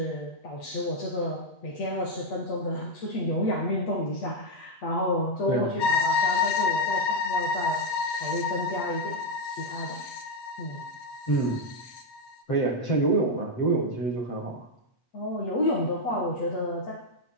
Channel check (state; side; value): late; right; 8.6 ms